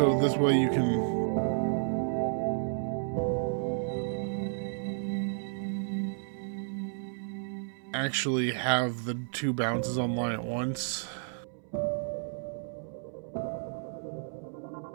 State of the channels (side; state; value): left; silent; 57 dB below the other